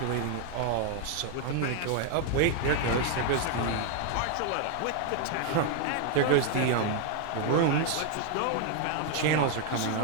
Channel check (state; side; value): different; both; correlation 0.00